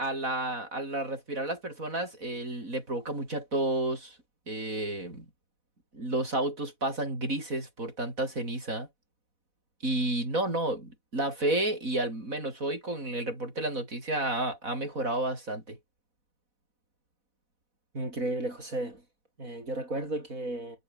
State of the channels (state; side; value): late; left; 4.1 ms